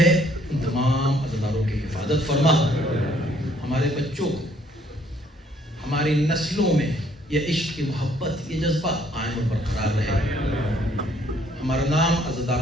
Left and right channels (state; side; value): normal; both; correlation 0.64